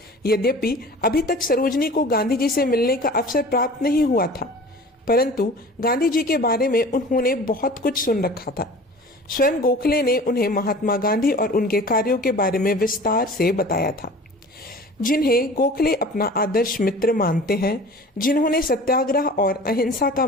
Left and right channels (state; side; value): normal; both; correlation 0.42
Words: यद्यपि अभी तक सरोजनी को गांधी जी से मिलने का अवसर प्राप्त नहीं हुआ था, परंतु गांधी जी के बारे में उन्होंने बहुत कुछ सुन रखा था। स्वयं गोखले ने उन्हें महात्मा गांधी और उनके कार्यों के बारे में विस्तार से बताया था, जिन्हें गोखले अपना आदर्श मित्र मानते हैं, जिन्होंने सत्याग्रह और अहिंसा का